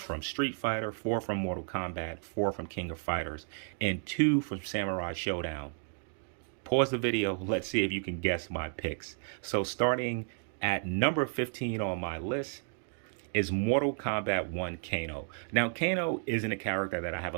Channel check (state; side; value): silent; left; 56 dB below the other